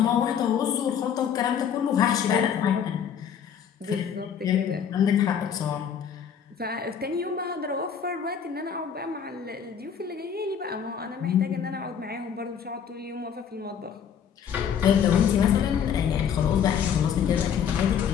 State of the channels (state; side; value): quieter; right; 7.8 dB